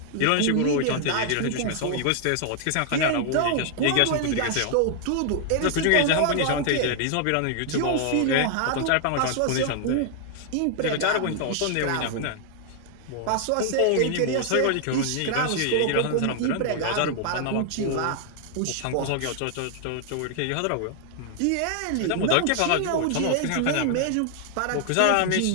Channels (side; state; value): both; different; correlation 0.00